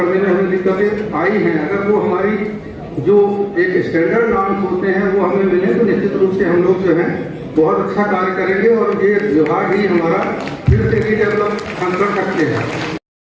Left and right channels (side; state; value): both; identical; correlation 1.00